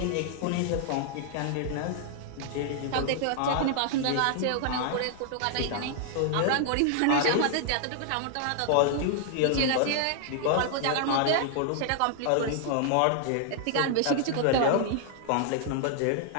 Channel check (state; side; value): different; both; correlation -0.01